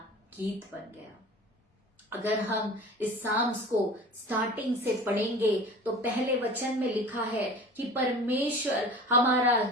गीत बन गया। अगर हम इस साम्स को स्टार्टिंग से पढ़ेंगे तो पहले वचन में लिखा है कि परमेश्वर हमारा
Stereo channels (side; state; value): both; normal; correlation 0.39